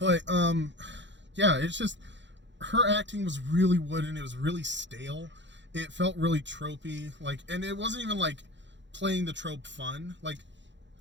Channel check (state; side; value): late; left; 0.53 ms